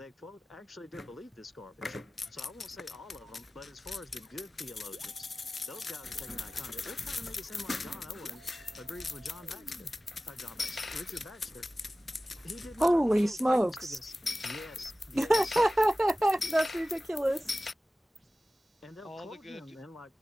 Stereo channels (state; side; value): normal; both; correlation 0.96